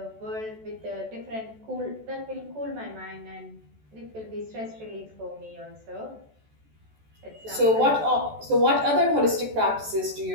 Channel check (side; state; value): left; late; 14 ms